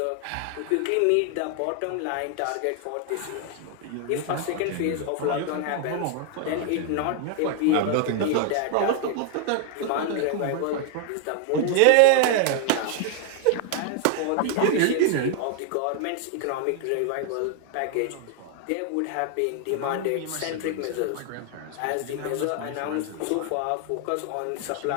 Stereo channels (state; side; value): different; both; correlation 0.00